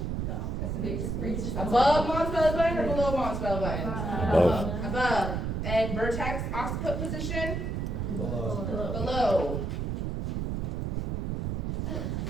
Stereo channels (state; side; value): noise; right; rumble, 2 dB below the sound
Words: Above mom's belly button or below mom's belly button? Above. Above. And vertex occiput position? below. Below.